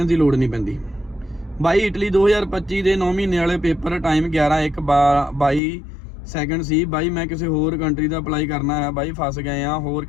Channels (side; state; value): right; drops out; at 5.6 s